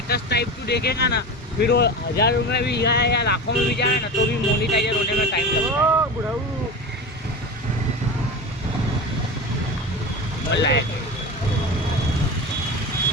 टाइप तू देखेगा ना, फिर वो 1000 रुपये भी जाए या लाखों में भी जाए ना, तो भी मोनेटाइजर होने में टाइम लगता है। बुढ़ाऊ बोला है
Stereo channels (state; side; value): normal; both; correlation 0.27